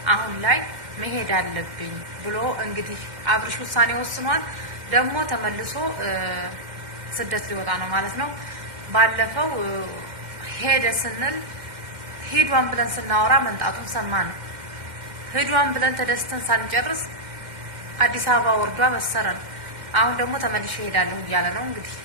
አሁን ላይ መሄድ አለብኝ ብሎ እንግዲህ አብርሽ ውሳኔ ወስኗል። ደግሞ ተመልሶ ስደት ሊወጣ ነው ማለት ነው። ባለፈው ሄደ ስንል ሂዷን ብለን ስናወራ መንጣቱን ሰማን። ሂዷን ብለን ተደስተን ሳንጨርስ አዲስ አበባ ወርዷ በሰረን። አሁን ደግሞ ተመልሼ እሄዳለሁ እያለ ነው። እንግዲህ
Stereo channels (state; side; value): late; left; 2.1 ms